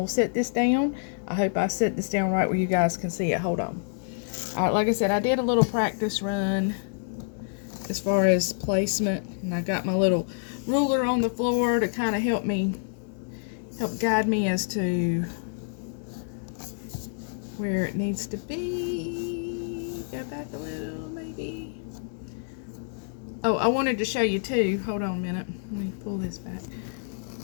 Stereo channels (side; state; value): right; silent; 60 dB below the other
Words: set this down. I hope I set this down right where you guys can see it. Hold on. All right, like I said, I did a little practice run as far as placement, and I got my little ruler on the floor to kind of help guide me as to where it needs to be. Go back a little, maybe. Oh, I wanted to show you too. Hold on a minute. Let me pull this back.